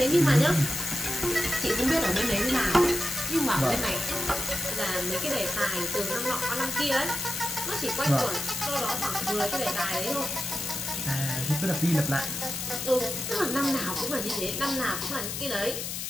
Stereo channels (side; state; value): left; noise; hiss, 5 dB below the sound